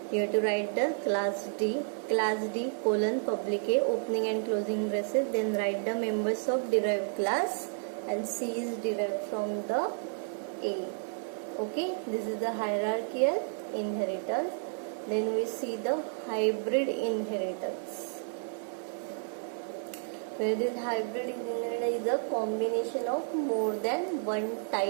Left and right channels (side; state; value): left; silent; digital silence